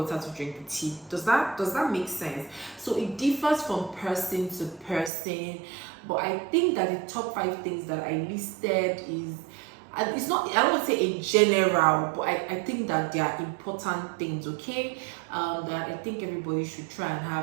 to drink the tea. Does that make sense? So it differs from person to person, but I think that the top 5 things that I listed is, and it's not, I don't want to say in general, but I think that they are important things, okay? That I think everybody should try and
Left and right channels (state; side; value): drops out; left; at 5.1 s